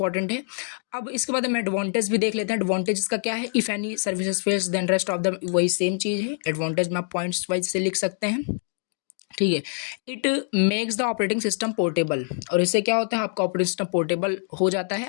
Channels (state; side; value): silent; right; 62 dB below the other